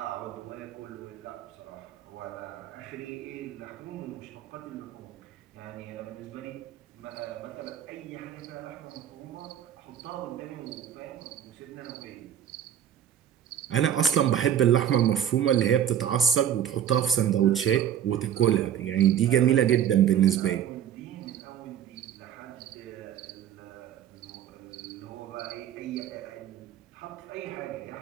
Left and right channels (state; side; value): quieter; left; 9.8 dB